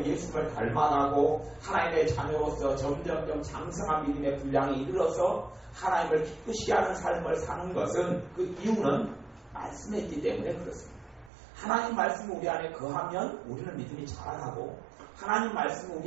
예수님을 닮아가고 하나님의 자녀로서 점점점 장성한 믿음의 분량에 이르러서 하나님을 기쁘시게 하는 삶을 사는 것은 그 이유는 말씀에 있기 때문에 그렇습니다. 하나님 말씀이 우리 안에 거하면 우리는 믿음이 자라나고 하나님 말씀이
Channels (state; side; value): drops out; left; at 11.3 s